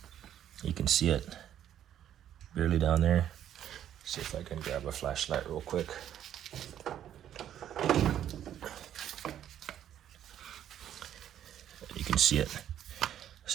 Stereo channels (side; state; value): left; quieter; 10.7 dB